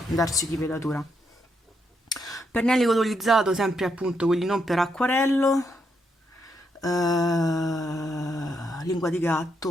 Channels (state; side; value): normal; both; correlation 0.78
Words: darci di velatura. Pennelli colorizzato sempre appunto quelli non per acquarello, lingua di